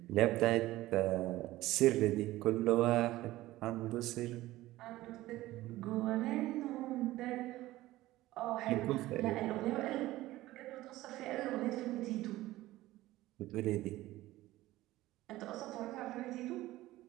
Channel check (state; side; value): quieter; left; 16.8 dB